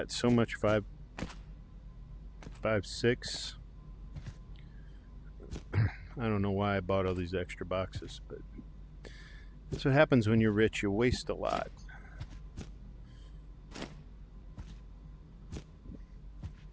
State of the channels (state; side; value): identical; both; correlation 1.00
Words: so much 5.6. I don't know why I bought all these extra boxes, but that's what happens when you're rich. You waste a lot.